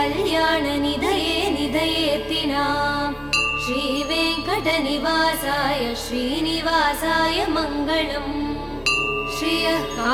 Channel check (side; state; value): both; identical; correlation 1.00